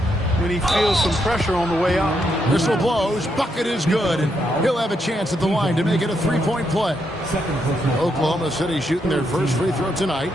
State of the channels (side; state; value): both; normal; correlation 0.79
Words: when he feels some pressure on the way out. Whistle blows. Bucket is good. And he'll have a chance at the line to make it a three-point play. Oklahoma City shooting their first free throw tonight.